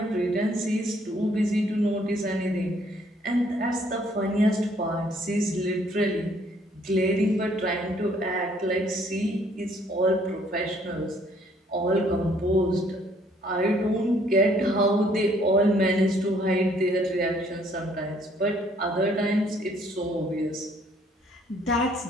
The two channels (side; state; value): both; normal; correlation 0.64